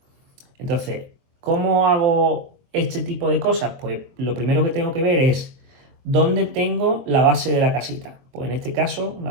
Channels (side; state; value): left; late; 23 ms